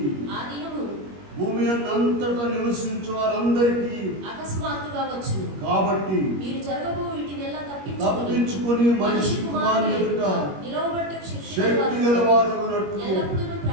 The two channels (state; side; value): late; left; 21 ms